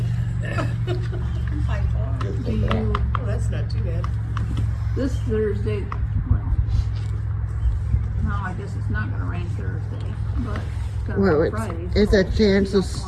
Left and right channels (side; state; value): both; identical; correlation 1.00